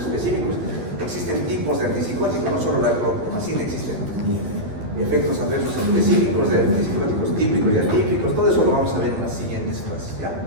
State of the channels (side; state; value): left; late; 12 ms